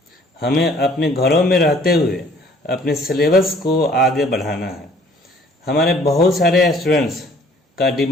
हमें अपने घरों में रहते हुए अपने सिलेबस को आगे बढ़ाना है। हमारे बहुत सारे स्टूडेंट्स का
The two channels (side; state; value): both; normal; correlation 0.56